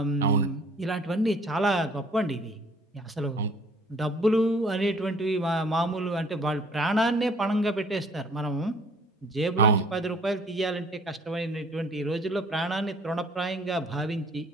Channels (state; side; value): normal; both; correlation 0.55